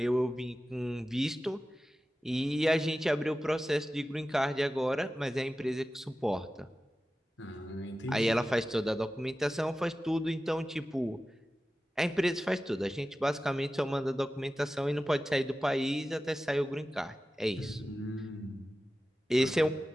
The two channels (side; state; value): both; normal; correlation 0.94